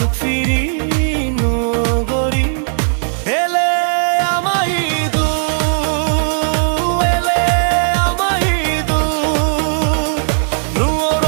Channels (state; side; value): silent; left; digital silence